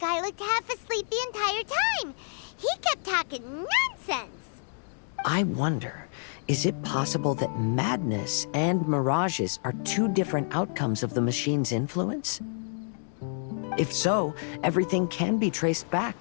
looked half asleep the entire time. He kept talking nonsense. I wonder, is it possible that madness and mirages are two different outcomes of the machine's influence? If so, everything can be traced back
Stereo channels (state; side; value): silent; right; digital silence